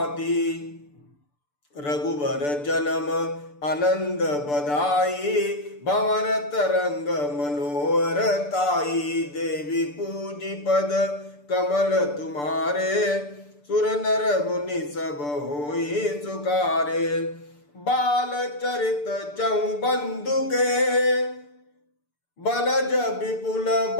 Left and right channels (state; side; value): late; right; 6.8 ms